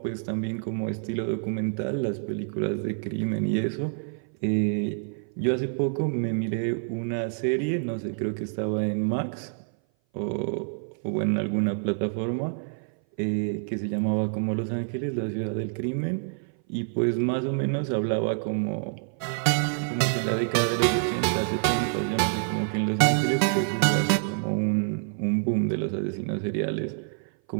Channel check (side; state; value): left; silent; 57 dB below the other